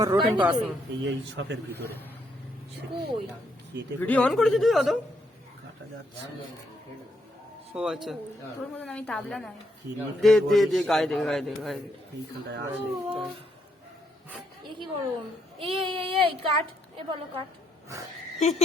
রোটিন পাসিং এই শপের ভিতরে কই? কেটে ভিডিও অন করেছিস তুই অত কাটা যাচ্ছে। ও আচ্ছা তোর মতন আমি তাবলা নাই। কি নিয়ে দে দে দে গায়ে দে গায়ে দে গায়ে দে এইখানটায় আছে। এ কি গরম? এই এই এই এই কাট, এ বলো কাট।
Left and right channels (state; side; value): normal; both; correlation 0.75